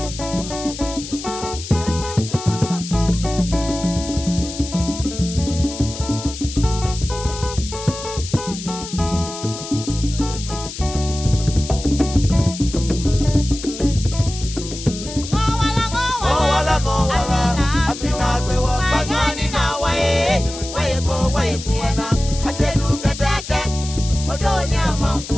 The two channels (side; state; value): left; noise; hiss, 10 dB below the sound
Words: I said, look at that again, Odonia